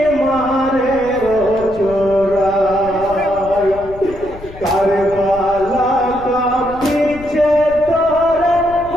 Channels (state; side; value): noise; left; rumble, 17 dB below the sound